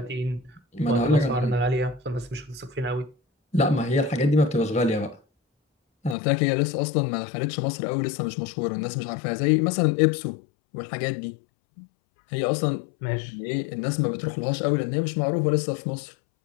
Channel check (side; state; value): right; drops out; at 6.2 s